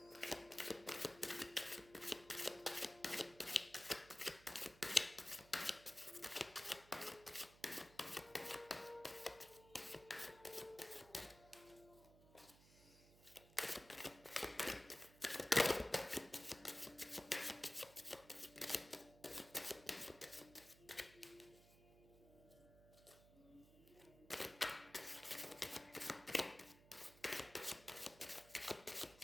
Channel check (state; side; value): noise; right; hum, 22 dB below the sound